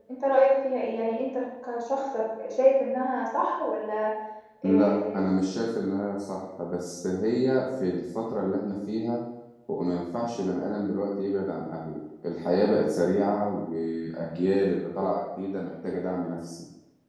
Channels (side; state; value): both; identical; correlation 1.00